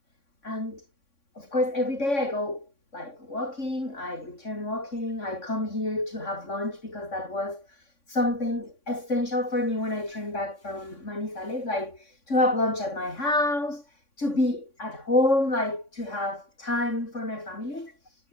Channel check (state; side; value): late; right; 3.6 ms